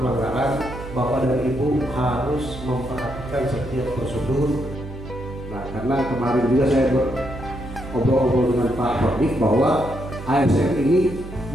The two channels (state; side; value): noise; right; hum, 12 dB below the sound